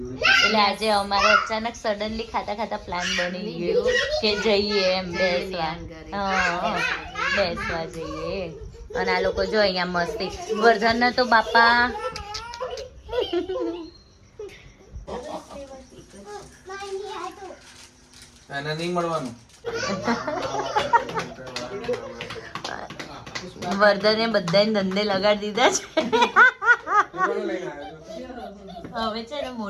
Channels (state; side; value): identical; both; correlation 1.00